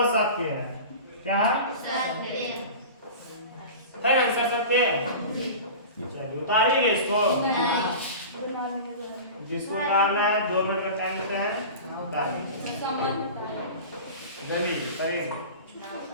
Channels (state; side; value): inverted; both; correlation -0.34